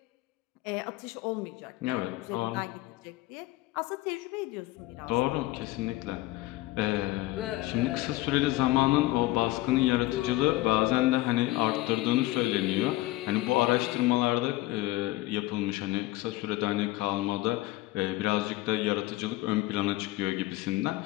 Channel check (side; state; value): right; quieter; 18.3 dB